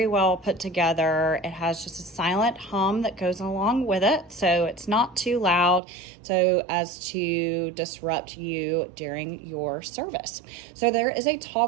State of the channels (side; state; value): left; drops out; at 5.8 s